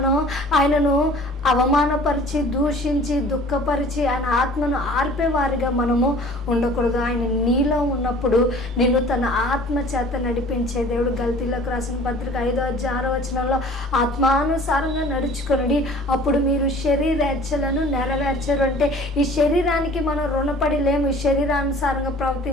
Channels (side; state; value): both; normal; correlation 0.48